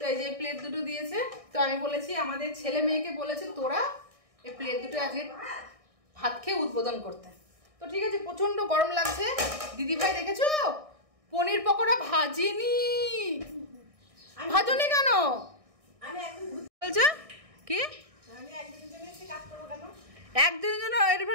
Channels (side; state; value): left; late; 1.6 ms